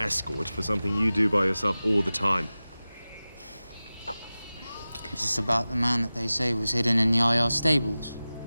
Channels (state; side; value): inverted; both; correlation -0.97